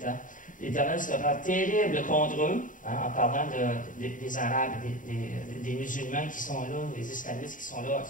L'Éternel sera terrible contre eux, hein, en parlant des Arabes, des musulmans qui sont là, des islamistes qui sont là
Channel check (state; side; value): late; right; 0.38 ms